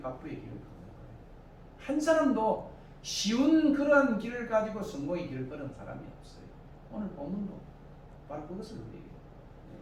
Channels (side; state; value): both; identical; correlation 1.00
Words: 길을 걷는 거예요. 한 사람도 쉬운 그런 길을 가지고 성공의 길을 걸은 사람이 없어요. 오늘 본문도 바로 그것을 우리에게